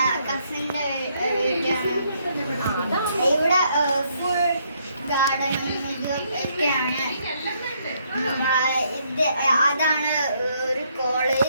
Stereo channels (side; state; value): both; inverted; correlation -0.72